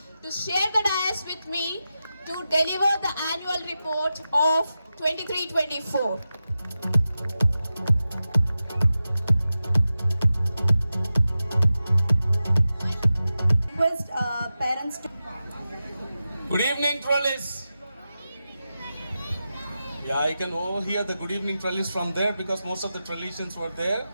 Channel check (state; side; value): inverted; both; correlation -0.92